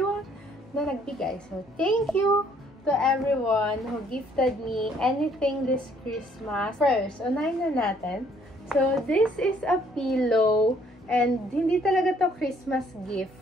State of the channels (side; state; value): both; normal; correlation 0.63